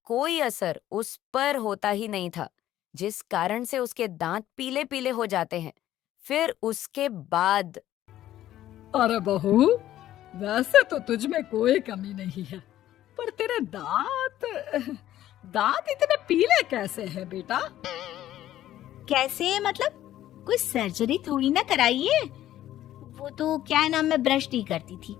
कोई असर उस पर होता ही नहीं था, जिस कारण से उसके दांत पीले पीले हो जाते हैं। फिर उसके बाद अरे बहू, वैसे तो तुझ में कोई कमी नहीं है, पर तेरे दांत दांत इतने पीले कैसे हैं बेटा? कैसे मतलब? कोई सर्जरी थोड़ी ना कराई है। वो तो क्या है ना, मैं ब्रश नहीं करती थी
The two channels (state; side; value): quieter; right; 13.1 dB